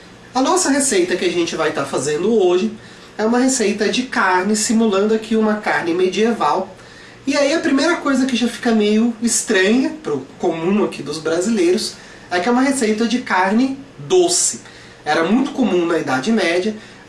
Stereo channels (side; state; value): both; identical; correlation 1.00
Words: A nossa receita que a gente vai estar fazendo hoje é uma receita de carne, simulando aqui uma carne medieval. E aí a primeira coisa que já fica meio estranha, para o comum aqui dos brasileiros, é que é uma receita de carne doce. Era muito comum na Idade Média